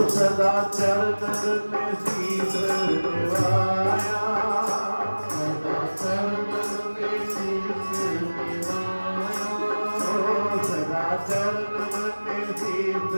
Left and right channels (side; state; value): both; inverted; correlation -1.00